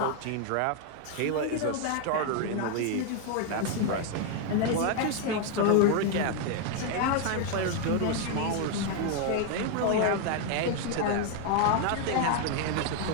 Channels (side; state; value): both; different; correlation 0.00